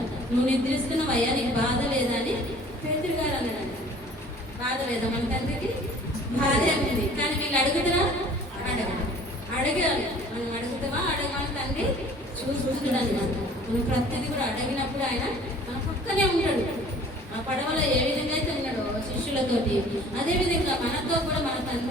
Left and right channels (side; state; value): both; normal; correlation 0.50